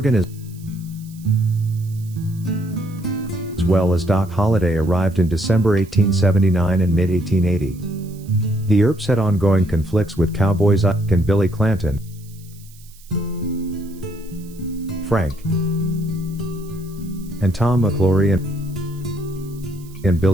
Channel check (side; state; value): right; noise; hiss, 25 dB below the sound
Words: as well as Doc Holliday arrived in December 1879 and mid-1880. The Earps had ongoing conflicts with cowboys Ike and Billy Clanton, Frank and Tom McClory and